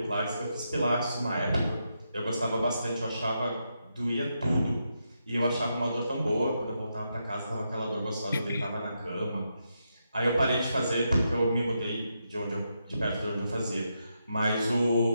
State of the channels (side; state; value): both; inverted; correlation -0.83